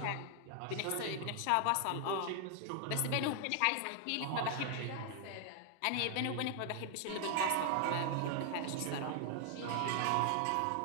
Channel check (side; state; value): both; different; correlation 0.00